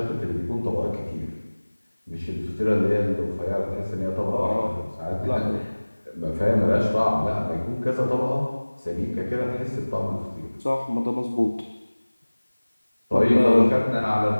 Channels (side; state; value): both; inverted; correlation -1.00